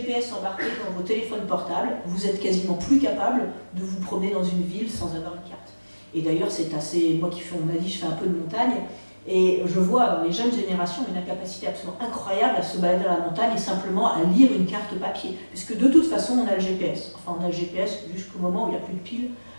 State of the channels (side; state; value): both; inverted; correlation -1.00